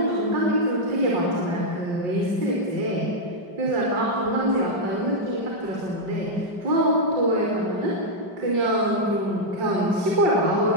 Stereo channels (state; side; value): late; left; 5.1 ms